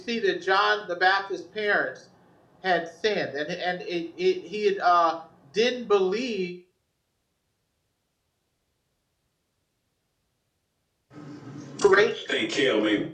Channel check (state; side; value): identical; both; correlation 1.00